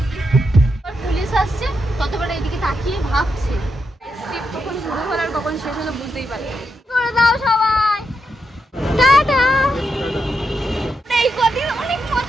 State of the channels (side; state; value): both; normal; correlation 0.84